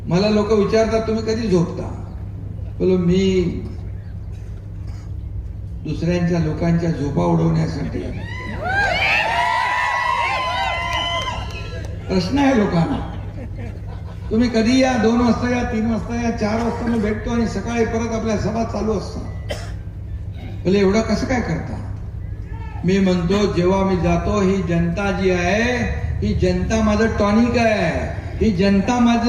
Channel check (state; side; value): identical; both; correlation 1.00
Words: मला लोक विचारतात तुम्ही कधी झोपता? बोलो मी दुसऱ्यांच्या लोकांच्या झोपा उडवण्यासाठी. प्रश्न आहे लोकांना, तुम्ही कधी या, 2 वाजता या, 3 वाजता या, 4 वाजता मी भेटतो आणि सकाळी परत आपल्या सभा चालू असतात. बोले एवढं कसं काय करता? मी म्हणतो जेव्हा मी जातो, ही जनता जी आहे, ही जनता माझं टॉनिक आहे, ही जनता